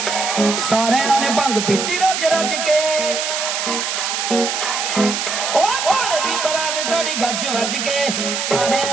सारियां ने भंग पीती रज रज के ओ भोले दी बरात चढ़ी गज वज के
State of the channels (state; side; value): noise; right; hiss, 2 dB below the sound